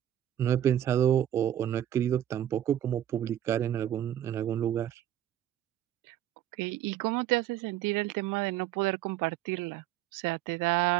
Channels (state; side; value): quieter; left; 11.7 dB